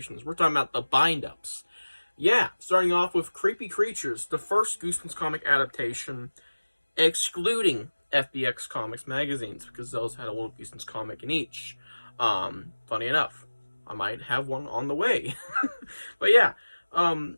We're talking about the bind-ups. Yeah, starting off with Creepy Creatures, the first Goosebumps comic adaptation, excluding FBX Comics magazines, because those had a little Goosebumps comic in each. Funny enough, I might have one on the way. But yeah,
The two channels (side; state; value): both; inverted; correlation -1.00